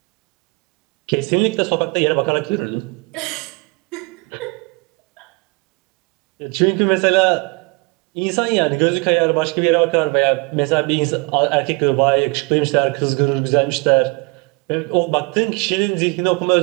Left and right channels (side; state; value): left; quieter; 29.2 dB